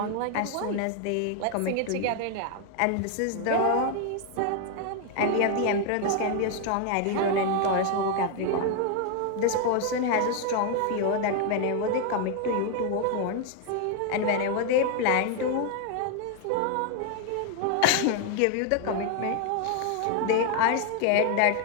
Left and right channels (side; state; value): both; different; correlation 0.00